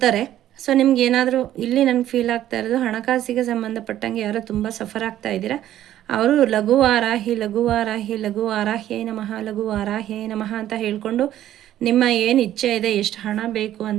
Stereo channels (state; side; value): quieter; left; 12.4 dB